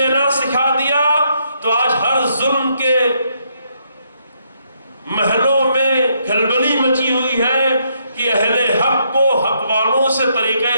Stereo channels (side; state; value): both; inverted; correlation -0.75